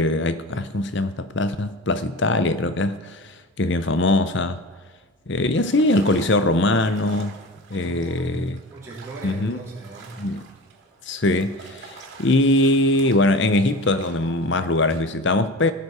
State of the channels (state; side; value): normal; both; correlation 0.34